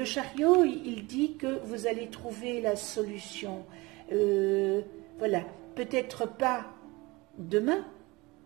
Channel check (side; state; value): left; quieter; 23.3 dB